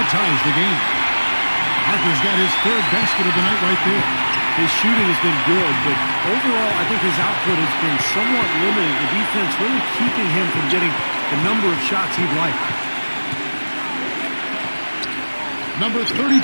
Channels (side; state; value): both; inverted; correlation -1.00